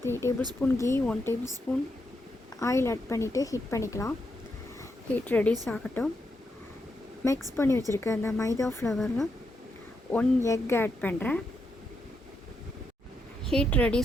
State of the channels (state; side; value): normal; both; correlation 0.82